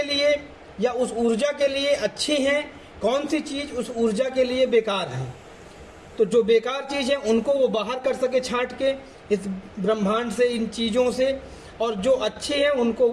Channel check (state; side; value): identical; both; correlation 1.00